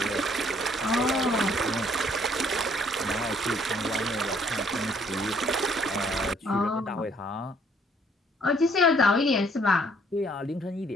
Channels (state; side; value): normal; both; correlation 0.63